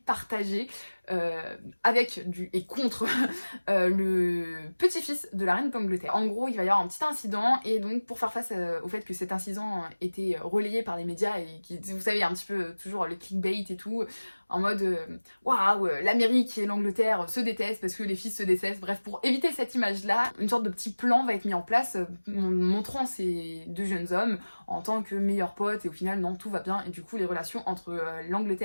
avec et contre le petit-fils de la reine d'Angleterre. En gros, il va y avoir un petit incident et donc pour faire face au fait que cet incident était relayé par les médias et qui, vous savez, un petit peu toujours le clickbait et tout, en mode waouh, l'Amérique et l'Angleterre se détestent parce que les fils se détestent. Bref, pour éviter cette image-là, une sorte de petit plan va être mis en place montrant ces deux jeunes hommes en tant que meilleurs potes et au final, non, tout va bien et du coup, les relations entre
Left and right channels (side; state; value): both; inverted; correlation -1.00